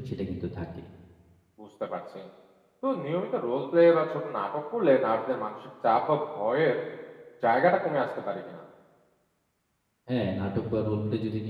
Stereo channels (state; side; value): identical; both; correlation 1.00